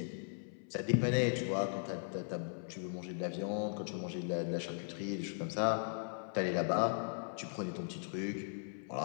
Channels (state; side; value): silent; right; 52 dB below the other